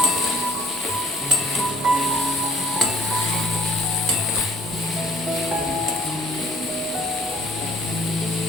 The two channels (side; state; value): both; normal; correlation 0.57